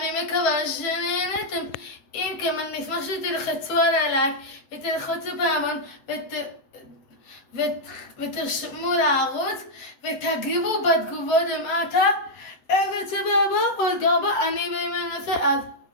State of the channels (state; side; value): late; right; 8.0 ms